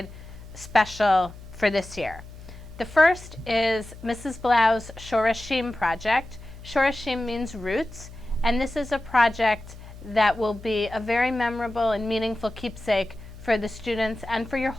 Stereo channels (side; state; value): left; noise; hum, 16 dB below the sound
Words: special for this year. The first is Mrs. Blau's Shorashim project. Shorashim means roots, and this is a project that will be a very memorable and meaningful keepsake for the students and for your